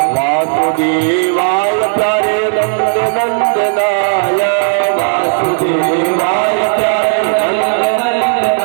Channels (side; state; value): left; silent; digital silence